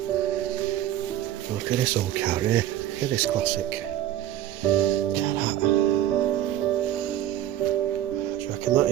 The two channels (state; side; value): quieter; left; 12.4 dB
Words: Look at this old car here. Look at this classic. Look at that. What do you reckon that